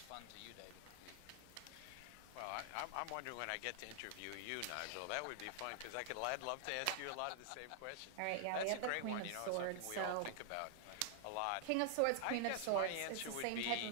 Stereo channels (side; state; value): both; different; correlation -0.01